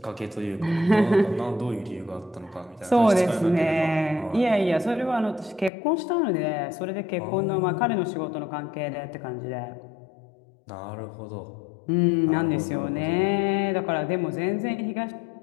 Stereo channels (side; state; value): right; drops out; at 5.7 s